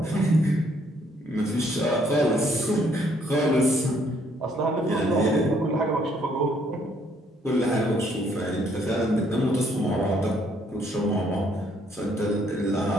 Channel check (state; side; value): normal; both; correlation 0.67